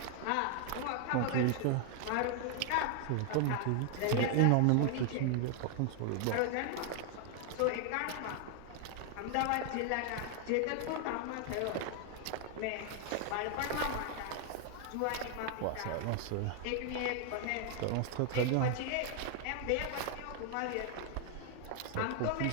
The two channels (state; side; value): different; both; correlation 0.00